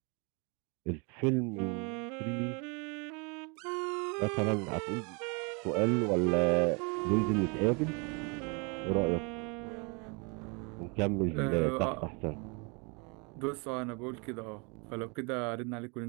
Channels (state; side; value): quieter; left; 32.3 dB